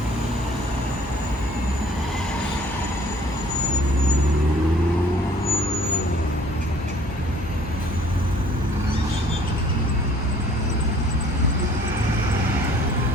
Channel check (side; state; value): both; normal; correlation 0.55